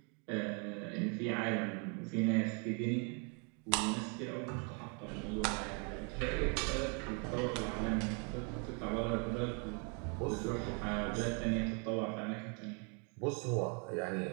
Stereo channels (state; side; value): quieter; left; 36.8 dB